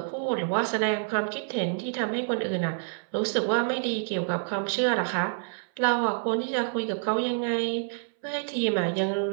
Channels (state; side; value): silent; left; 60 dB below the other